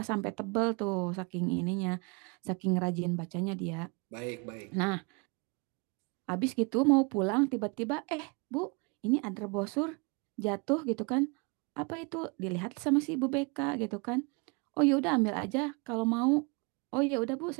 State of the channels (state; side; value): quieter; left; 31.2 dB